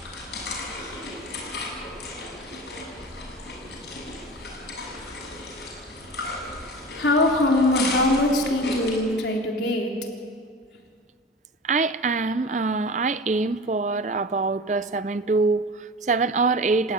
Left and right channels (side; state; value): both; normal; correlation 0.34